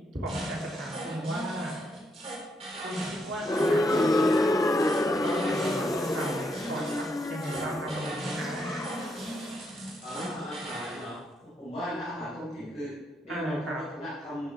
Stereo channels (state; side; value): normal; both; correlation 0.78